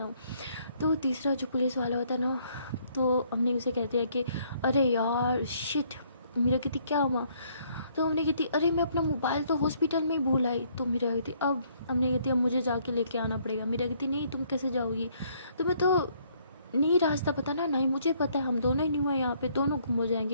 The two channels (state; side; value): inverted; both; correlation -0.66